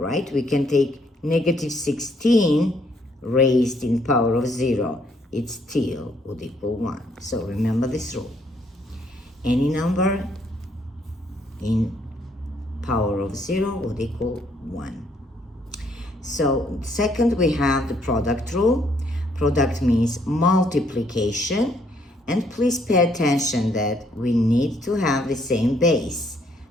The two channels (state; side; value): normal; both; correlation 0.69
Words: We can take negative 16 raised in power of 0, it still would equal 1. So remember this rule. Any number in power of 0 would equal 1. So second, we have the product rule. Product means multiplication. And please pay attention that we need to have the same base.